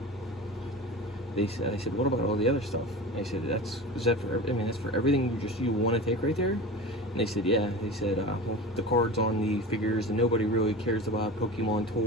They said, I said, what about all the other stuff? I said, that's for everything you want to take right there? And they said, yeah. They said, well, the cards on the figures, and nobody really cares about Pokemon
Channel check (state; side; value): normal; both; correlation 0.31